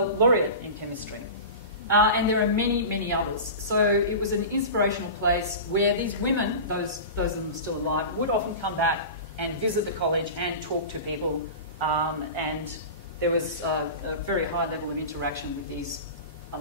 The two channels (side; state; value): both; inverted; correlation -0.31